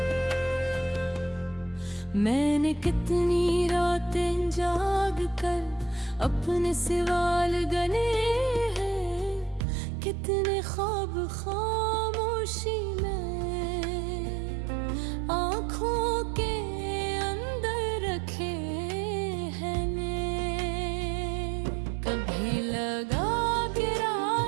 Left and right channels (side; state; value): left; drops out; at 9.7 s